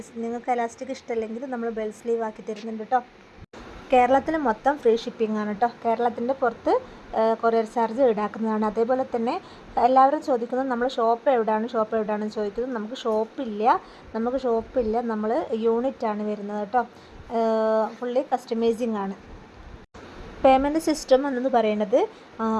നിങ്ങൾക്ക് എലാസ്റ്റിക് ഇഷ്ടമല്ലെങ്കിൽ നമ്മൾ ബെൽ സ്ലീവ് ആക്കി തരുന്നുണ്ട് കേട്ടോ. കേരളത്തിൽ മൊത്തം ഫ്രീ ഷിപ്പിംഗ് ആണ് കേട്ടോ. കേരളത്തിൻ്റെ പുറത്ത് കൊറിയർ ചാർജ് ഈടാക്കുന്നതാണ്. അതേപോലെ തന്നെ എല്ലാവരും ചോദിക്കുന്നത് നമ്മൾ ഷോപ്പ് എവിടെയാണെന്ന് ചോദിക്കുന്നത്. നമുക്ക് ഷോപ്പില്ല, നമ്മൾ യൂണിറ്റാണ് വരുന്നത് കേട്ടോ. ഫുള്ളി കസ്റ്റമൈസിങ് ആണ്. പേയ്മെൻറ്റ് സിസ്റ്റം എന്ന് പറയുന്നത്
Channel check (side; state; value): both; identical; correlation 1.00